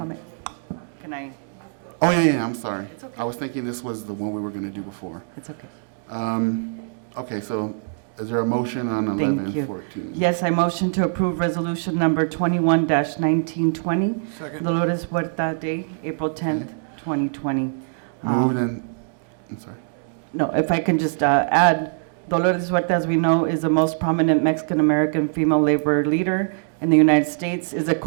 Can I? Oh, yeah, I'm sorry. It's okay. I was thinking this was the one we were going to do before. It's okay. Okay, so is there a motion on Thank you. 1114? Yes, I motion to approve resolution number 21-1920, Second. Dolores Huerta Day, April 10th, 2020. Moved and, I'm sorry. No, if I can just add, Dolores Huerta, as we know, is the most prominent Mexican-American female labor leader in the United States, is a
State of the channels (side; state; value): left; silent; digital silence